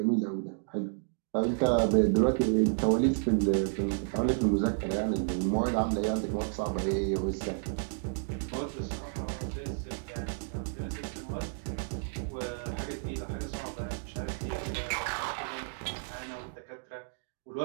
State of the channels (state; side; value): silent; left; digital silence